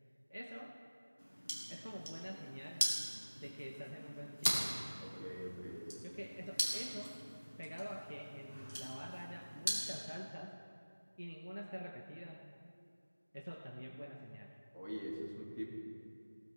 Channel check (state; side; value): inverted; both; correlation -1.00